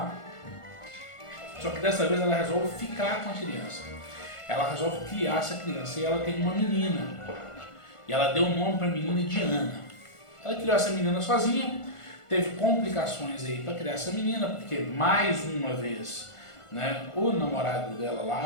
Só que dessa vez ela resolve ficar com a criança. Ela resolve criar essa criança e ela tem uma menina. E ela deu o nome para a menina de Ana. Ela criou essa menina sozinha, teve complicações aí para criar essa menina, porque mais uma vez, né, o namorado dela lá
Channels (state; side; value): late; right; 1.5 ms